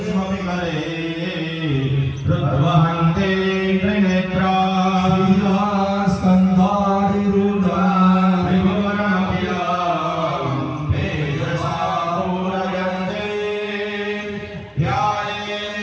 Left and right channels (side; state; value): both; identical; correlation 1.00